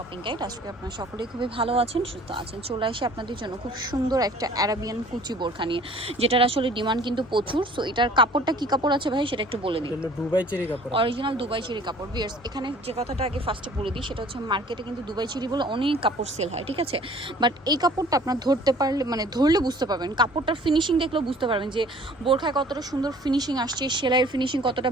guide. আজকে আপনারা সকলেই খুবই ভালো আছেন, সুস্থ আছেন। চলে আসি আপনাদের জন্য খুব সুন্দর একটা অ্যারাবিয়ান কুচি বোরখা নিয়ে, যেটার আসলে ডিমান্ড কিন্তু প্রচুর। সো এটার কাপড়টা কি কাপড় আছে ভাই সেটা একটু বলে দিন। দুবাই চেরি কাপড়, অরিজিনাল দুবাই চেরি কাপড়। ভিউয়ার্স, এখানে যে কথাটা আগে ফার্স্টে বলে দিই সেটা হচ্ছে মার্কেটে কিন্তু দুবাই চেরি বলে অনেক কাপড় সেল হয়, ঠিক আছে। বাট এই কাপড়টা আপনার ধরতে পারলে, মানে ধরলে বুঝতে পারবেন, কাপড়টার ফিনিশিং দেখলেও বুঝতে পারবেন যে বোরখায় কতটা সুন্দর ফিনিশিং আসছে, সেলাইয়ের ফিনিশিং কতটা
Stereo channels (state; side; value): normal; both; correlation 0.52